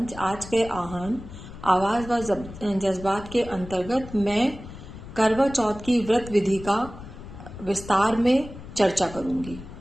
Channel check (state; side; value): noise; left; rumble, 14 dB below the sound